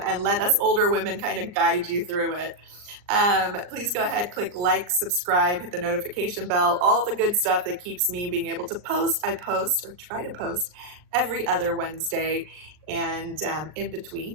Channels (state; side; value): late; left; 39 ms